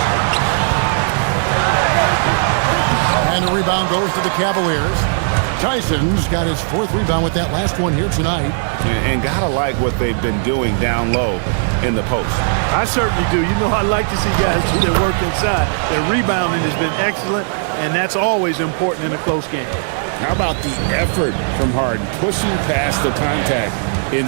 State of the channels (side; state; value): left; silent; 61 dB below the other